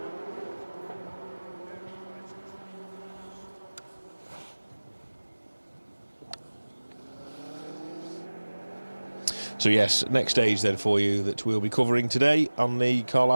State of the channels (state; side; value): inverted; both; correlation -1.00